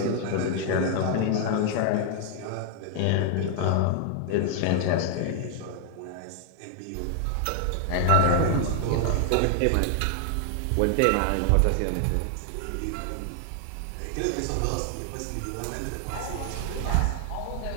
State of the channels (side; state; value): both; different; correlation 0.00